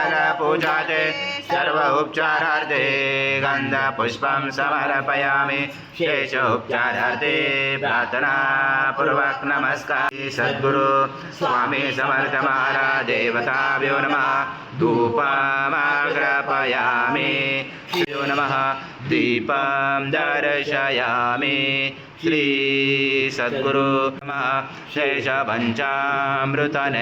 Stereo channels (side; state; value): both; identical; correlation 1.00